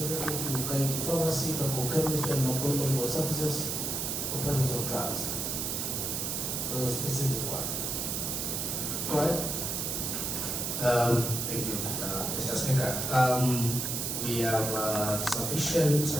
to Kaiti Pharmacy, Chemist, and Makueni Medical Services for purchase of drugs? A specific one. Go ahead. Thank you, Mr. Speaker. We have sufficient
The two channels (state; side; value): noise; right; hiss, 1 dB below the sound